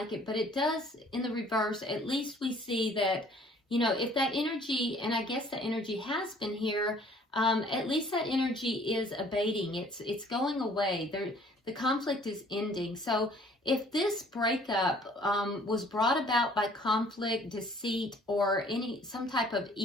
it, but it does, in the reverse, at least we see that, you know, if that energy, and I guess the energy has been here, at least that energy is abating. It's going away. The conflict is ending. So if this breakup was brought about by conflict, deceit, or some type of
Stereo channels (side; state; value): both; normal; correlation 0.56